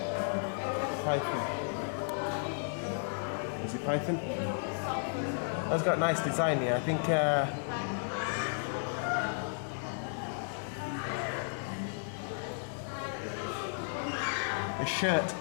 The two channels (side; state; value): right; silent; 55 dB below the other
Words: Python. Is it python? That's got nice design here. I think a shirt